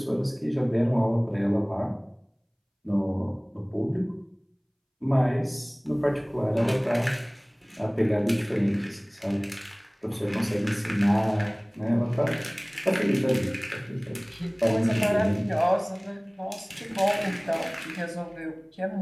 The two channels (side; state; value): both; identical; correlation 1.00